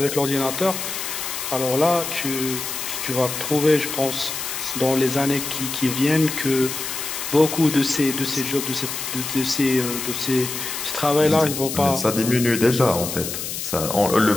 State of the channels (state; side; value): noise; left; hiss, 5 dB below the sound